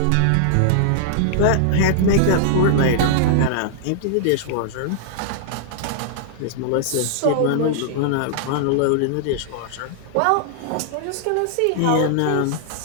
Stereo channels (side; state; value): both; different; correlation -0.01